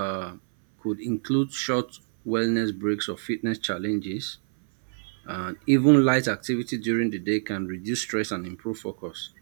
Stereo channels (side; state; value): left; silent; 61 dB below the other